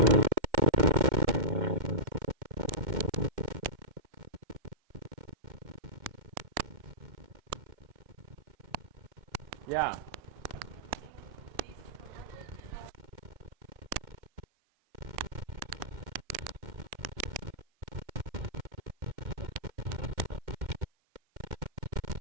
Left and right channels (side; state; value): left; late; 2.1 ms